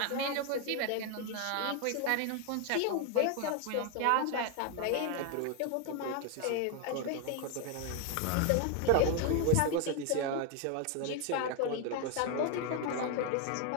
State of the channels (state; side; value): different; both; correlation 0.01